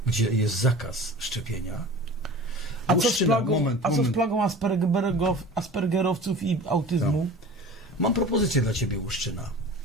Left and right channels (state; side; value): normal; both; correlation 0.38